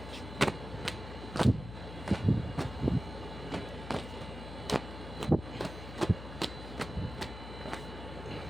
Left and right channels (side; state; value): left; noise; hum, 10 dB below the sound